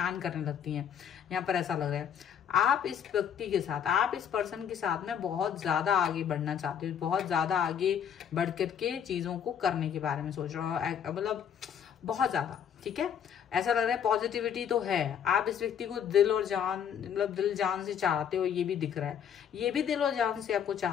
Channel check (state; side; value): quieter; right; 8.4 dB